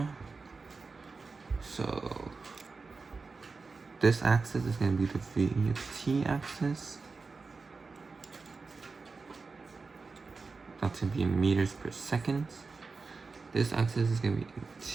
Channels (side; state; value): left; quieter; 4.3 dB